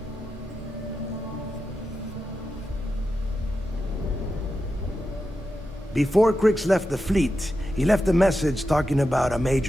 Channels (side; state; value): both; normal; correlation 0.89